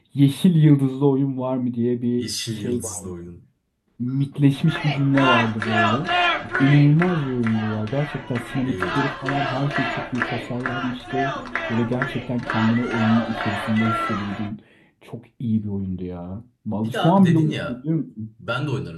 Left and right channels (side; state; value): both; identical; correlation 1.00